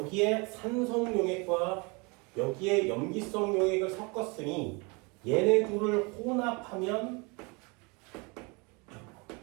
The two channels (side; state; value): left; quieter; 29.4 dB